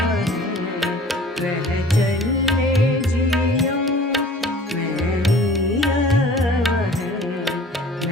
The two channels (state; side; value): normal; both; correlation 0.47